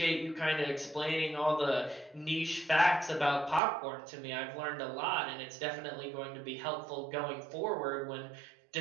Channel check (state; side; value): drops out; left; at 3.6 s